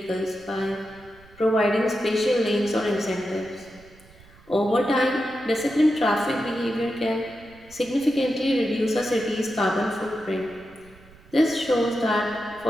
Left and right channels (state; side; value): noise; right; rumble, 25 dB below the sound